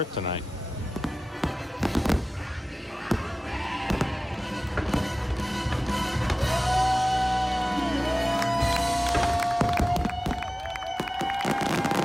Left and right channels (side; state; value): both; normal; correlation 0.96